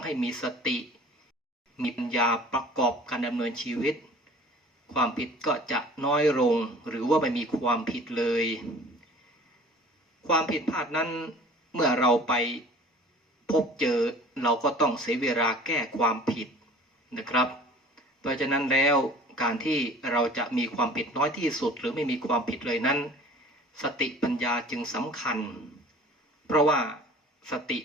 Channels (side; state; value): both; normal; correlation 0.46